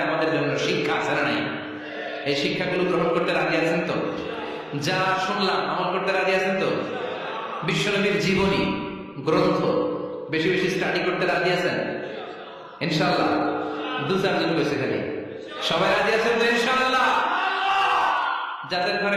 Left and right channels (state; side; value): identical; both; correlation 1.00